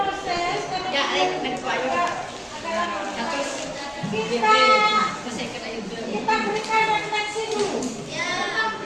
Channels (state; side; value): identical; both; correlation 1.00